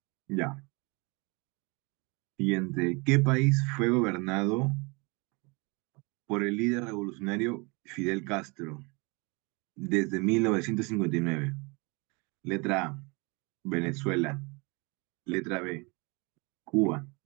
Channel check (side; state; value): left; quieter; 29.0 dB